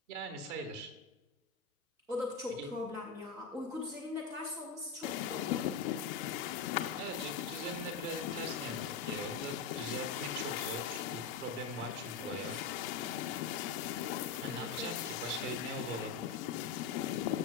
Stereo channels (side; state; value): right; quieter; 5.3 dB